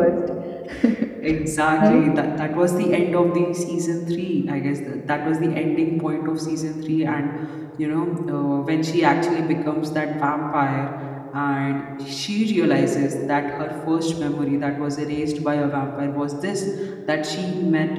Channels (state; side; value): identical; both; correlation 1.00